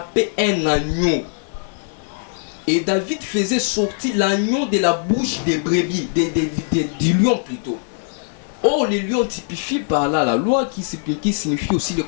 un agneau, et David faisait sortir l'agneau de la bouche des brebis, du lion plutôt. Or, les lions typifient par là la loi qui signifie aussi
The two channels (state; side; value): silent; right; digital silence